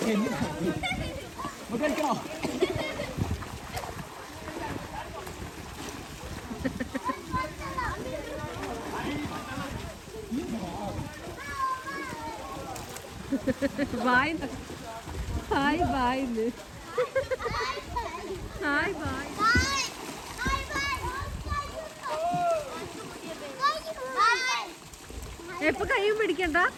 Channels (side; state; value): both; identical; correlation 1.00